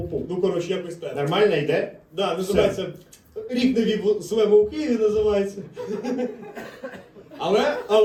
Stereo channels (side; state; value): both; identical; correlation 1.00